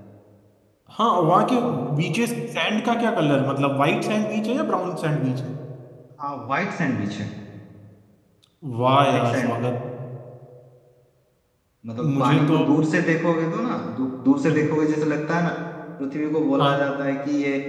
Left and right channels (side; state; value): both; identical; correlation 1.00